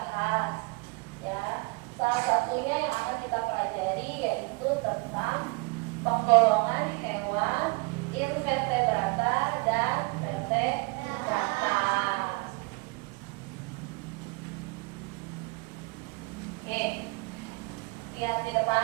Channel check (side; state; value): left; quieter; 28.5 dB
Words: Ya, salah satunya yang akan kita pelajari yaitu tentang penggolongan hewan invertebrata dan vertebrata. Lihat di